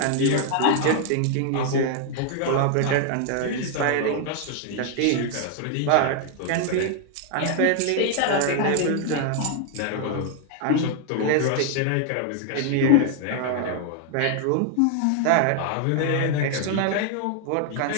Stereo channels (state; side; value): different; both; correlation 0.00